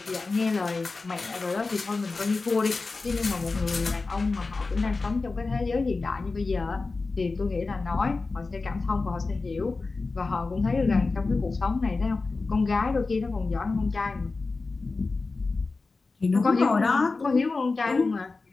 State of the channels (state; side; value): quieter; right; 3.8 dB